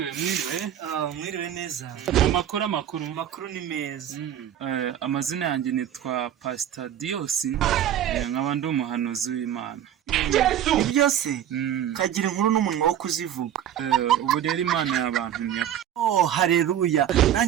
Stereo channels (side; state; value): left; quieter; 10.5 dB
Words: Mwiriwe neza. Amakuru ni meza. Amazina yanjye nitwa Pastor Dios, nkaba ndi umuhanuzi w'Imana. Ibyo se kagira inkuru n'umunwa wo kuzivuga. Ubu rero Imana yabantumye. Haleluya.